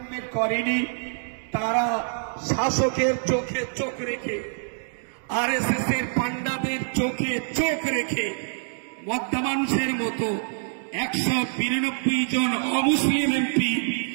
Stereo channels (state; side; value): silent; left; digital silence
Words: করেনি। তারা শাসকের চোখে চোখ রেখে, আরএসএস এর পান্ডাদের চোখে চোখ রেখে মধ্যা মানুষের মতো 192 জন অমুসলিম এমপি